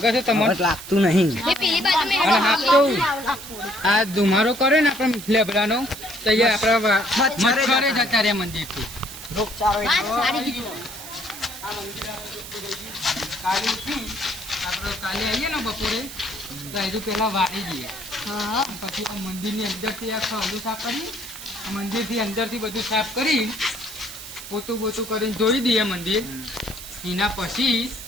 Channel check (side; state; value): right; noise; hiss, 12 dB below the sound